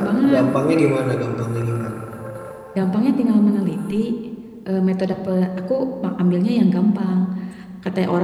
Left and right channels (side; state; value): both; identical; correlation 1.00